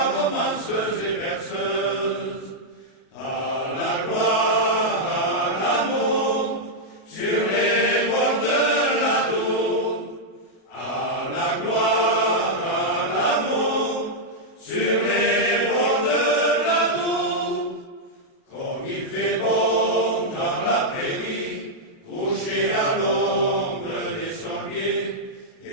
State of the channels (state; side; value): late; right; 37 ms